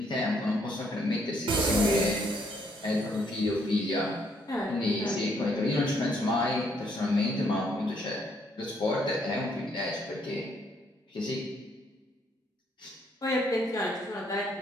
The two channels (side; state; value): both; normal; correlation 0.70